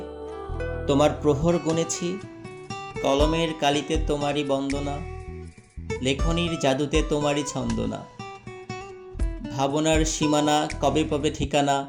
তোমার প্রহর গুনেছি। কলমের কালিতে তোমারই বন্দনা, লেখনীর জাদুতে তোমারই ছন্দনা। ভাবনার সীমানা কবে পাবে ঠিকানা,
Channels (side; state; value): both; identical; correlation 1.00